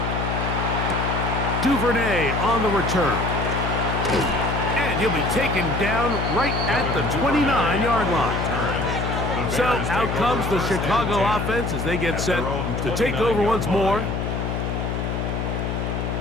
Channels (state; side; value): noise; left; hum, 2 dB below the sound